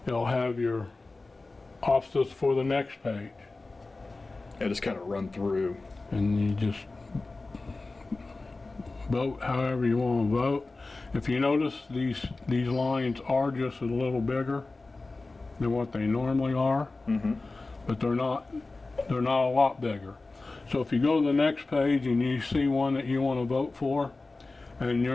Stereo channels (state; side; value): quieter; right; 3.4 dB